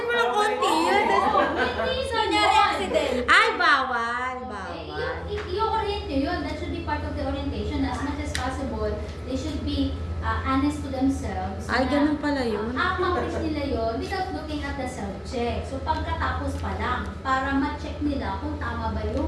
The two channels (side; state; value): both; identical; correlation 1.00